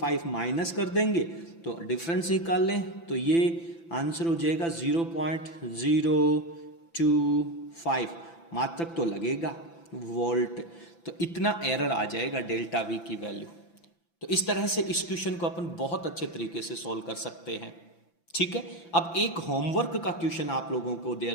माइनस कर देंगे तो डिफरेंस निकाल लें, तो ये आंसर हो जाएगा 0.025। मात्रक तो लगेगा वोल्ट, तो इतना एरर आ जाएगा डेल्टा V की वैल्यू। तो इस तरह से इस क्वेश्चन को अपन बहुत अच्छे तरीके से सॉल्व कर सकते हैं। ठीक है, अब एक होमवर्क का क्वेश्चन आप लोगों को दे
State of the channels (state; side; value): late; right; 5.9 ms